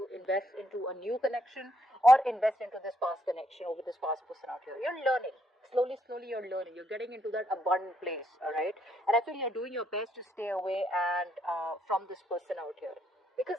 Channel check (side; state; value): both; normal; correlation 0.74